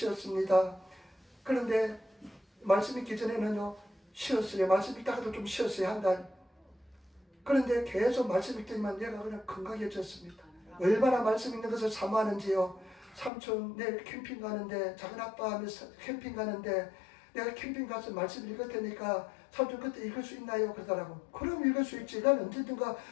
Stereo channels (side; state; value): right; drops out; at 13.3 s